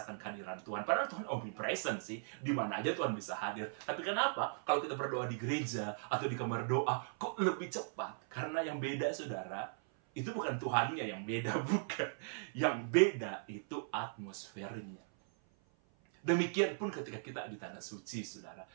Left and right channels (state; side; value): silent; left; 52 dB below the other